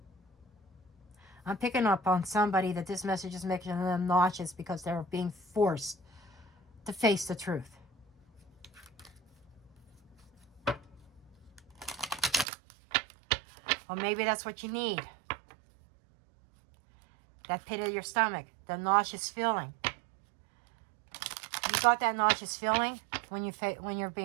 I'm picking up on somebody that this message is making them nauseous because they're being forced to face the truth. Well, maybe that's what you need. That pit of your stomach, the nauseous feeling. You got that nauseous feeling when you're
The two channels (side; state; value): left; drops out; at 12.5 s